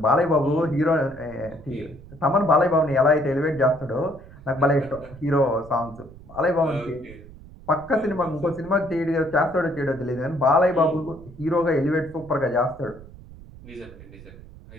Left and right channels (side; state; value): right; noise; rumble, 19 dB below the sound